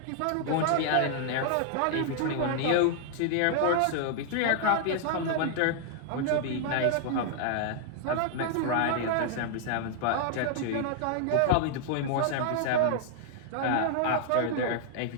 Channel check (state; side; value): different; both; correlation 0.00